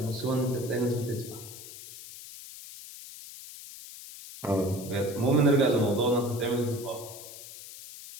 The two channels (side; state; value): left; noise; hiss, 14 dB below the sound